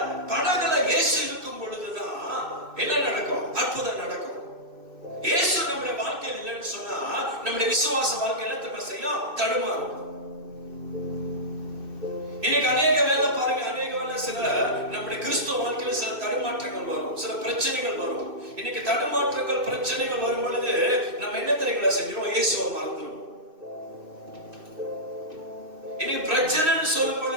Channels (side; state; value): left; late; 2.6 ms